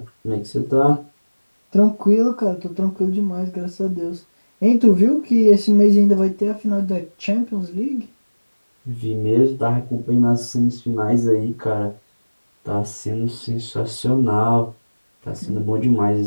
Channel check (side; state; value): both; inverted; correlation -1.00